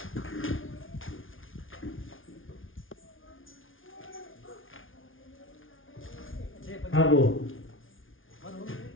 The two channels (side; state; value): right; late; 0.58 ms